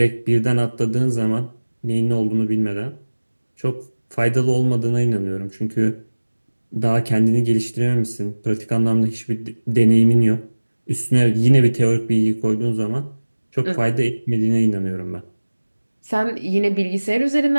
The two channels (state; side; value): inverted; both; correlation -1.00